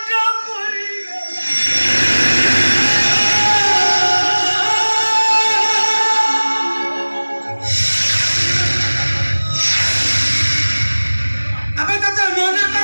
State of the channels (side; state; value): both; inverted; correlation -1.00